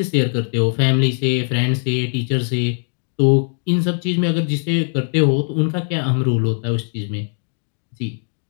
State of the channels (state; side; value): silent; right; digital silence